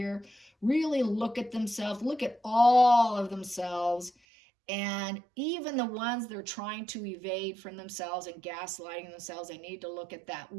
really look at themselves, look at all of themselves. And even the ones they're trying to evade from themselves and gaslighting themselves, they need to look at that,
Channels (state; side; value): drops out; left; at 4.1 s